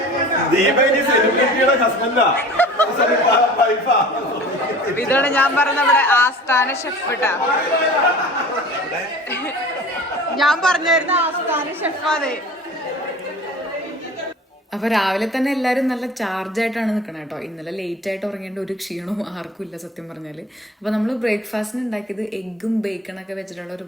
ഇതാണ് ഞാൻ പറഞ്ഞ നമ്മുടെ ആസ്ഥാന ഷെഫ് കേട്ടാ. ഞാൻ പറഞ്ഞായിരുന്നു ആസ്ഥാന ഷെഫാണ്. അപ്പോൾ രാവിലെ തന്നെ എല്ലാവരും നല്ല ചാർജായിട്ടാണ് നിൽക്കണം കേട്ടോ. ഇന്നലെ ലേറ്റായിട്ട് ഉറങ്ങേണ്ട ഒരു ക്ഷീണവും ആർക്കും ഇല്ല സത്യം പറഞ്ഞാൽ. അപ്പോൾ നമ്മൾ ബ്രേക്ക്ഫാസ്റ്റിന് ഉണ്ടാക്കിയത് എഗ്ഗും ബേക്കണൊക്കെ വെച്ചിട്ടുള്ള ഒരു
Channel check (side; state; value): both; normal; correlation 0.42